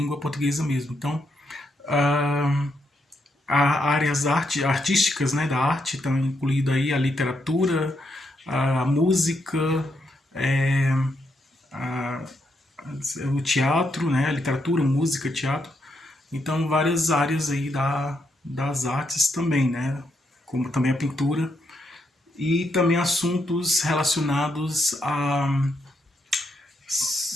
portuguesa mesmo. Então, áreas artísticas, né, da arte estão incluído aí a literatura, a música, é, a, o teatro, né, a literatura, música, teatro. Então, várias áreas aí das artes também, né, como também a pintura e também assuntos relacionados a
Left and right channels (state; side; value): normal; both; correlation 0.79